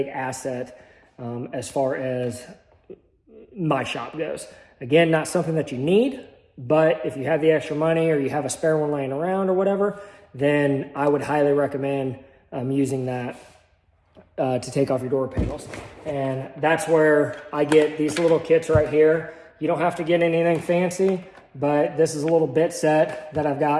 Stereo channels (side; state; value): both; identical; correlation 1.00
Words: asset as far as my shop goes. Again, not something that you need, but if you have the extra money or you have a spare one laying around or whatever, then I would highly recommend using that to take off your door panels. And that's where I get these little kits right here. You don't have to get anything fancy, but this is a little bit set that I've